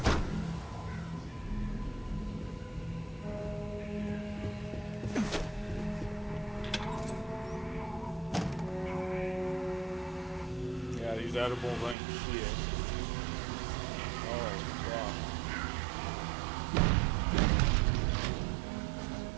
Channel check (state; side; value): drops out; left; at 12.0 s